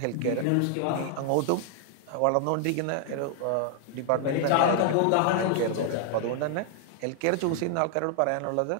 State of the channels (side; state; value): both; different; correlation 0.00